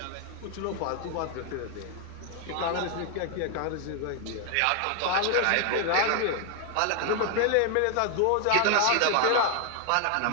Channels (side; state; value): both; different; correlation 0.00